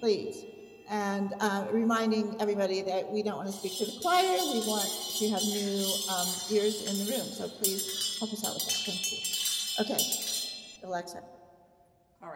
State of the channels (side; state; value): both; identical; correlation 1.00